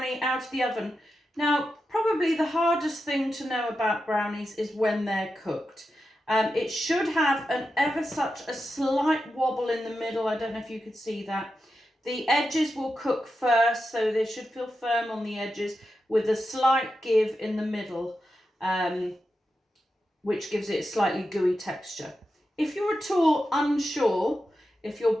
out of the oven. Now, probably the hardest thing to know about brownies is when they're cooked. It should have an ever such a slight wobble in the middle. I don't know if you could see that. The edges will cook first, so they should feel firm on the edges with a slight give in the middle, which gives it a slightly gooey texture. If you're at all unsure if your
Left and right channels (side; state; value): both; normal; correlation 0.89